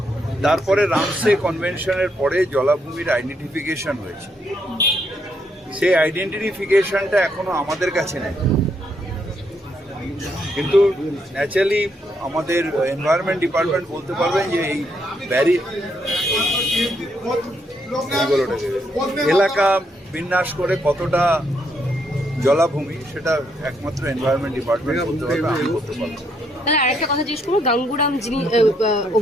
তারপরে রামসে কনভেনশনের পরে জলাভূমির আইডেন্টিফিকেশন হয়েছে। সেই আইডেন্টিফিকেশনটা এখনো আমাদের কাছে নেই, কিন্তু ন্যাচারালি আমাদের এনভায়রনমেন্ট ডিপার্টমেন্ট বলতে পারবেন যে এই এলাকা বিন্যাস করে কতটা জলাভূমি সেটা একমাত্র এনভায়রনমেন্ট ডিপার্টমেন্ট বলতে পারবে, আমি বলতে পারবো। তাহলে আরেকটা কথা জিজ্ঞেস করবো, গাঙ্গুরাম যিনি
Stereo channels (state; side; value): normal; both; correlation 0.75